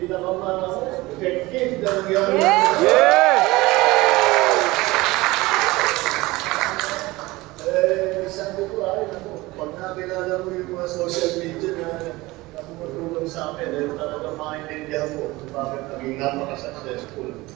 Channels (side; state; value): left; quieter; 20.5 dB